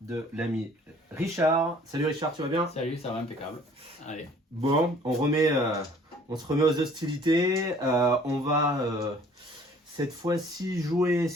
l'ami Richard. Salut Richard, tu vas bien? Salut, ça va impeccable. Allez. Bon, on se remet aux hostilités. On va cette fois-ci jouer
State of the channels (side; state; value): both; normal; correlation 0.54